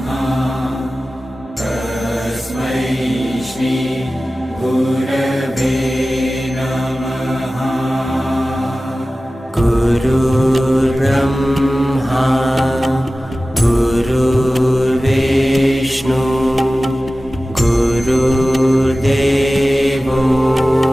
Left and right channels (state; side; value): normal; both; correlation 0.96